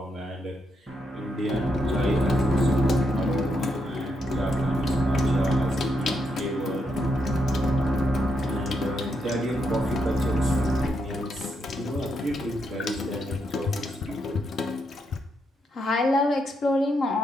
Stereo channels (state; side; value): normal; both; correlation 0.80